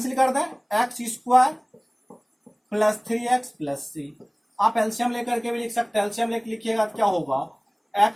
कर दें, x² plus 3x plus c। आप एलसीएम लेकर के भी लिख सकते हैं, एलसीएम लेकर लिखिएगा तो क्या होगा,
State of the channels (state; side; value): identical; both; correlation 1.00